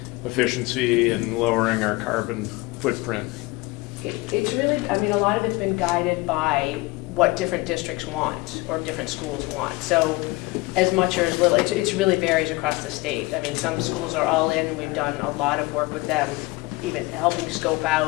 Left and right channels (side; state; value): right; quieter; 22.6 dB